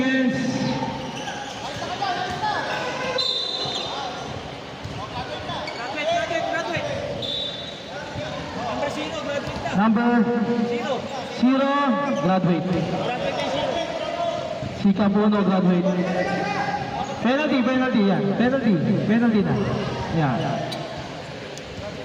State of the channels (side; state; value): both; identical; correlation 1.00